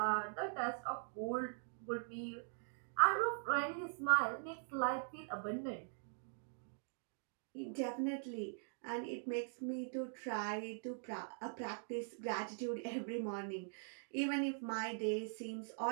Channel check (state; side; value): silent; left; digital silence